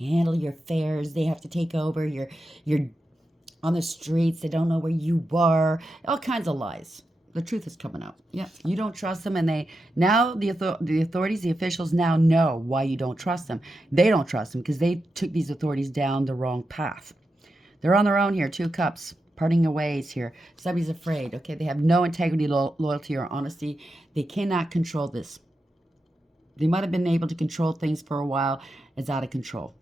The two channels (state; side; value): normal; both; correlation 0.88